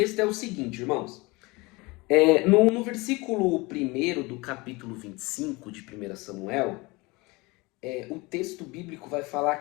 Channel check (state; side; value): quieter; right; 24.3 dB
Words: é o seguinte, irmãos. No versículo 1 do capítulo 25 de 1 Samuel, o texto bíblico vai falar